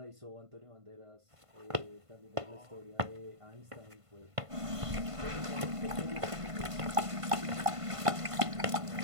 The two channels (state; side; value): late; left; 1.5 ms